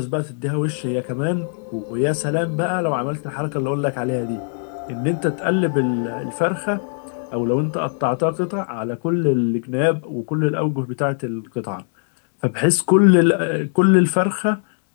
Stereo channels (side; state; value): right; silent; digital silence